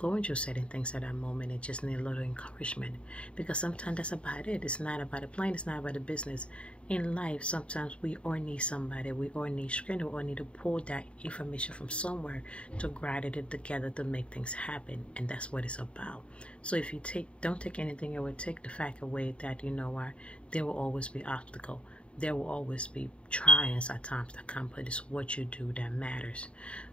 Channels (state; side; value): late; right; 0.059 ms